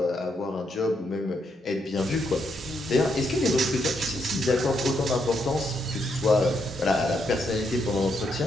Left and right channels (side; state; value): both; normal; correlation 0.78